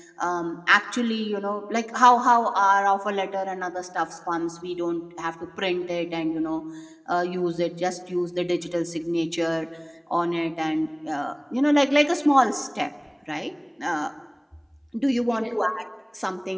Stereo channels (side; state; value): both; identical; correlation 1.00